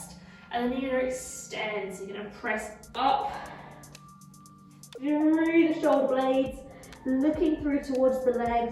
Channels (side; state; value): both; identical; correlation 1.00